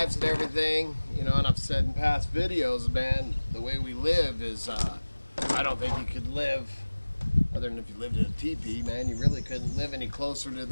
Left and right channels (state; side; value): inverted; both; correlation -1.00